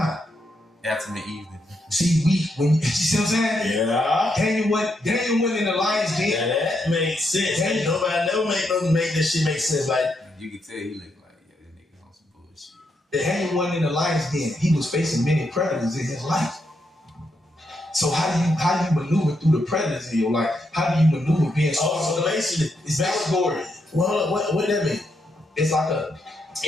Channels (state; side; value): normal; both; correlation 0.80